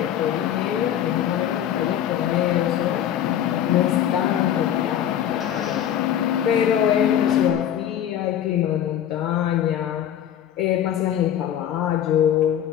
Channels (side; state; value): right; quieter; 10.4 dB